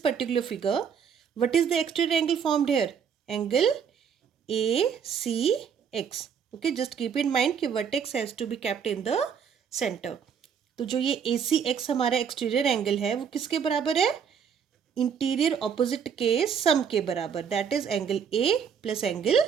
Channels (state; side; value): quieter; left; 7.3 dB